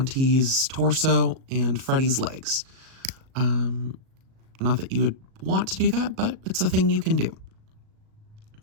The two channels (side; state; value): left; late; 37 ms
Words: torso and Freddy's legs. Not that you would want to do that, but it's a thing you can do.